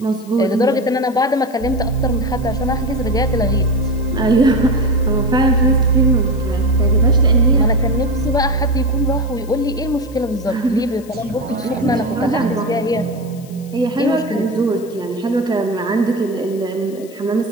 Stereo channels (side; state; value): left; noise; hiss, 23 dB below the sound